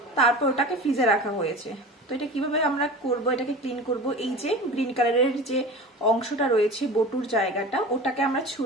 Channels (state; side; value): normal; both; correlation 0.35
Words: তারপর ওটাকে ফ্রিজে রাখা হয়েছে। তো এটা কিভাবে আমরা করব, এটাকে ক্লিন করব, এই যে গ্রিন কালারের যে অংশটা রয়েছে বটুর জায়গাটা, ওটাকে আমরা